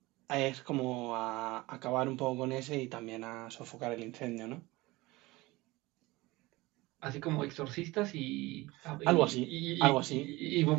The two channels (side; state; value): left; quieter; 21.1 dB